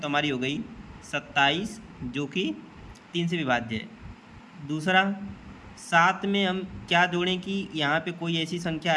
हमारी हो गई 27, जो कि 3 से विभाज्य है। दूसरा, 7 में हम क्या जोड़ें कि यहाँ पे कोई ऐसी संख्या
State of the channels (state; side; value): identical; both; correlation 1.00